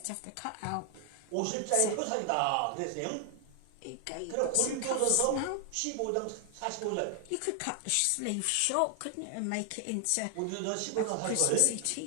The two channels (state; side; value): different; both; correlation 0.00